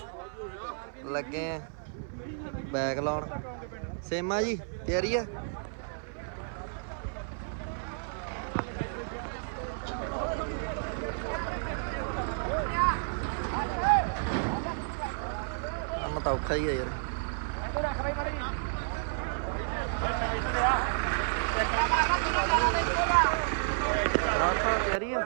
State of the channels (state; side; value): silent; left; 55 dB below the other